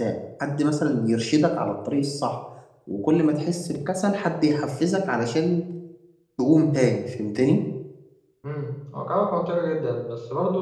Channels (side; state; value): both; identical; correlation 1.00